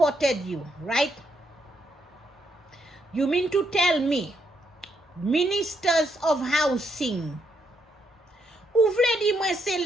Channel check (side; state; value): both; normal; correlation 0.77